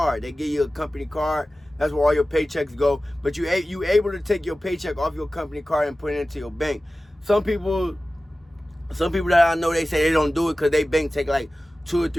They give you a company card. That's where all your paychecks go. But you able to take your paycheck off your company card and put it into your bank. Some people that I know, they say they don't do it because they bank take like 2 or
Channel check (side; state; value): both; normal; correlation 0.96